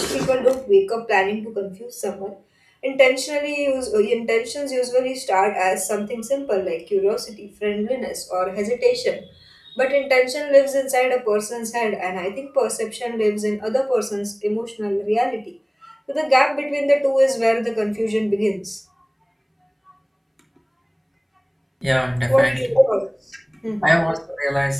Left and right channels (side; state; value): both; identical; correlation 1.00